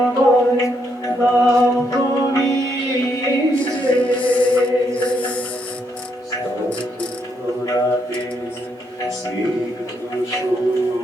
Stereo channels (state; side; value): normal; both; correlation 0.76